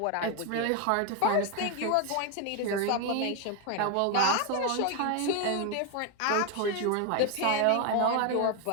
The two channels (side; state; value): both; different; correlation 0.01